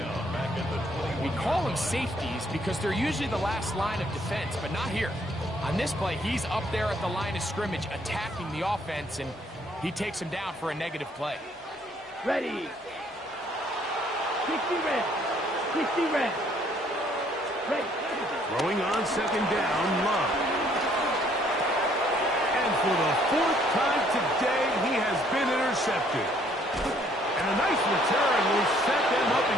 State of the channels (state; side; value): normal; both; correlation 0.64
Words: We call them safeties because they're usually the last line of defense, but not here. On this play, he's up there at the line of scrimmage attacking the offense, and he takes him down for a negative play. Ready. 60 red. 60 red. Ready. Throwing on second down, Love. And for the 4th time today, he has been intercepted. And a nice return will set them up